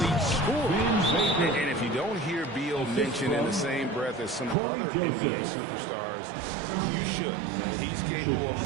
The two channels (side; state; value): left; drops out; at 4.5 s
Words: scorers. And if you don't hear Beal mentioned in the same breath as some other NBA superstars, you should. He's capable of